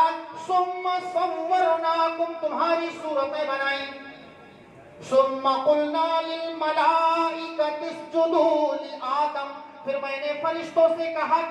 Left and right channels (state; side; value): identical; both; correlation 1.00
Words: ثُمَّ صَوَّرْنَاكُمْ تمہاری صورتیں بنائیں، ثم قلنا للملائکۃ اسجدوا لآدم پھر میں نے فرشتوں سے کہا